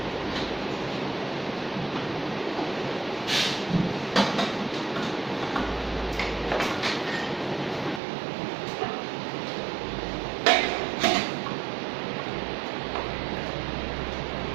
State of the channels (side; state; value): left; drops out; at 8.0 s